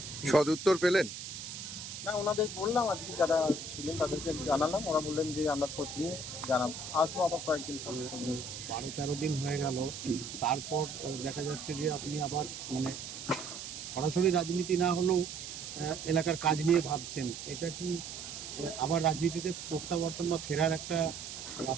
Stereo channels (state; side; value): noise; right; hiss, 9 dB below the sound